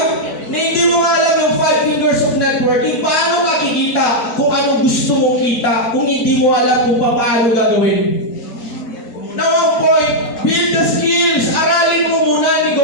Na hindi mo nga alam yung 5 fingers of networking, paano makikita kung ano gusto mong kita, kung hindi mo alam kung paano gagawin. Now, ang point, build the skills. Aralin mo muna ang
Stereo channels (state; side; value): late; right; 4.4 ms